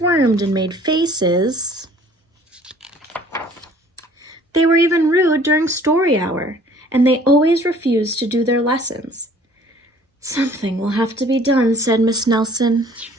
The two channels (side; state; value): both; normal; correlation 0.53